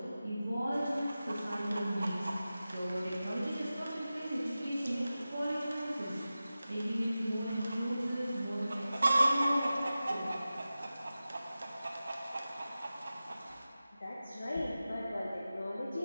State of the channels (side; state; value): both; inverted; correlation -0.95